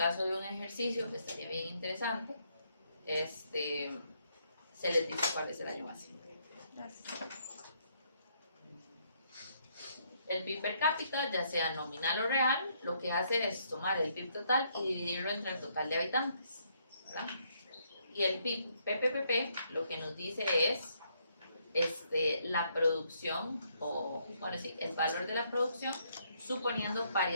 de un ejercicio que estaría bien interesante, se les dice cuál es el año base. Gracias. El PIB per cápita, ya sea nominal o real, lo que hace es tomar el PIB total y dividirlo entre el total de habitantes, ¿verdad? Y el PIB PPPP lo que nos dice es la producción, o bueno, sí, el valor de la producción suponiendo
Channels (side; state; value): both; inverted; correlation -0.72